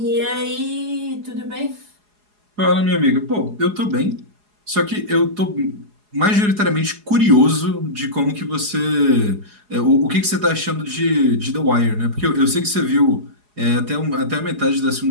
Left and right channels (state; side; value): late; left; 4.8 ms